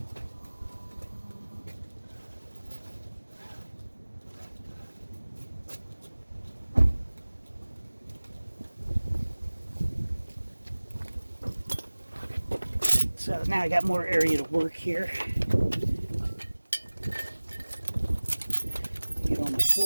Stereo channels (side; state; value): both; inverted; correlation -1.00